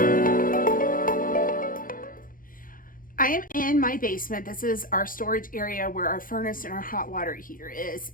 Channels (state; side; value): late; right; 0.40 ms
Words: am in my basement. This is our storage area where our furnace and our hot water heater is.